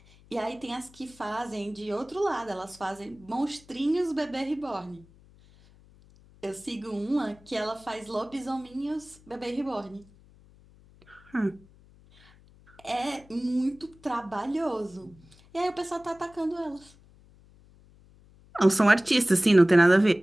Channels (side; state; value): left; noise; hum, 26 dB below the sound